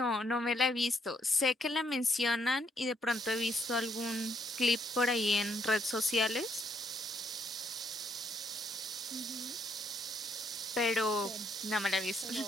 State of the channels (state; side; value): normal; both; correlation 0.73